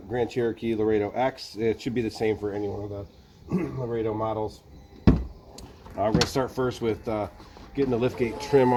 Grand Cherokee Laredo X. It should be the same for any one of the Laredo models. We're going to start first with getting the lift gate trim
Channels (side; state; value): both; identical; correlation 1.00